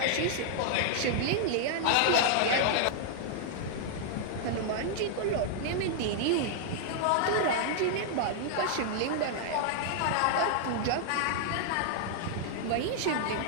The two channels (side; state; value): both; different; correlation -0.01